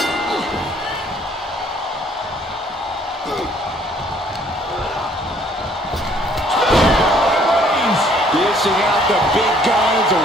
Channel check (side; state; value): both; normal; correlation 0.61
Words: Dishing out the big guns